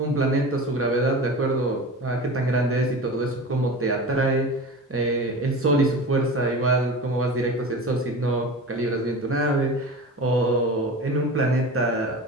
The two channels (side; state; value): both; normal; correlation 0.32